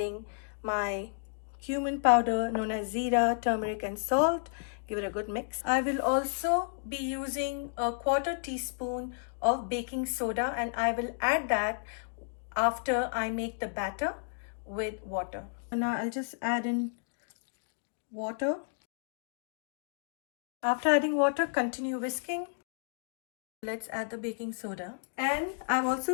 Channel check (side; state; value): right; silent; digital silence